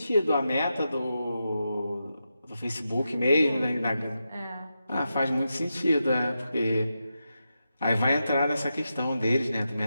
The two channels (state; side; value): inverted; both; correlation -0.88